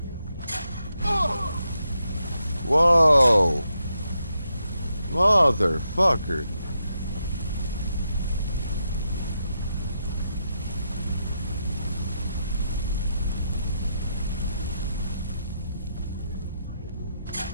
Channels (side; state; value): both; inverted; correlation -0.83